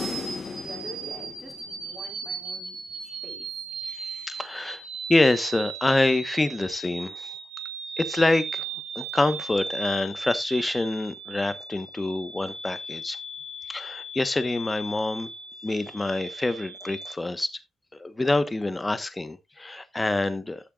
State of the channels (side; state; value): both; normal; correlation 0.94